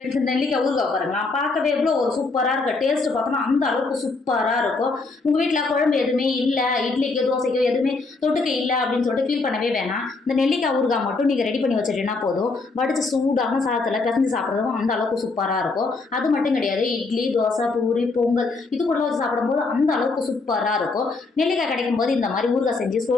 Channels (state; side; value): quieter; right; 3.8 dB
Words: நெல்லிக்காய் ஊறுகாய் பாருங்களா, பார்க்கவே எவ்வளோ ஒரு சூப்பராக இருக்கு. டேஸ்ட் பார்த்தோம்னா அந்த அளவுக்கு சூப்பராக இருக்கும். உங்கள் வீட்டில் குழம்பு எதுவுமே இல்லை, இட்லிக்கோ தோசைக்கோ எதுவுமே தொட்டுக்க இல்லை அப்படின்னு சொல்லிட்டு ஃபீல் பண்ணவே வேணாம். இந்த நெல்லிக்காய் ஊறுகாய் மட்டும் நீங்கள் ரெடி பண்ணி வச்சுட்டீங்கன்னா போதும். வடிச்சு சூடான சாதத்தில் பிசைஞ்சு சாப்பிட்றதும் அந்த அளவுக்கு சூப்பராக இருக்கும். அது மட்டும் கிடையாது, இட்லி, தோசை, பூரி, பொங்கல் இது கூட வச்சு சாப்பிடும்போது அந்த அளவுக்கு சூப்பராக இருக்கும். நெல்லிக்காய் கிடைக்கும் போது இந்த மாதிரி ஊறுகாய் செஞ்சு